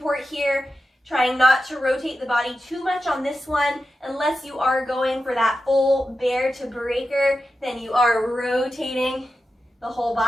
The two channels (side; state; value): both; normal; correlation 0.91